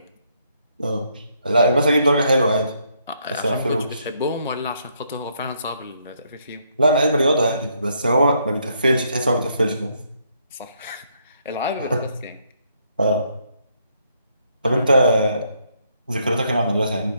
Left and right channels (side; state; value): both; inverted; correlation -0.72